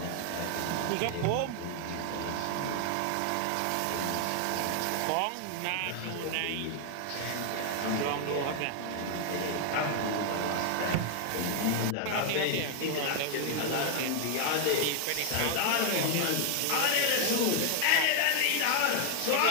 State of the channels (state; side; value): different; both; correlation 0.00